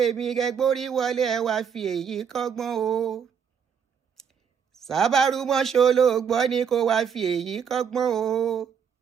ẹ gbórí wọlé ẹ wá fi èyí kọ́gbọ́n o. Sábàrú mọ́ṣọ́ ló gbọ́ ni kó wá fi èyí kọ́gbọ́n o.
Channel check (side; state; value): left; quieter; 7.2 dB